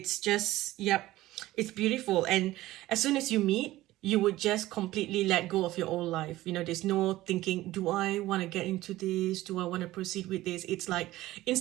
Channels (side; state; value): left; quieter; 16.6 dB